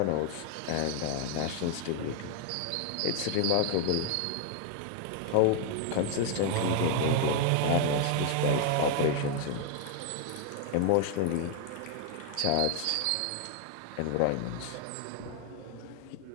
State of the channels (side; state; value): both; different; correlation 0.00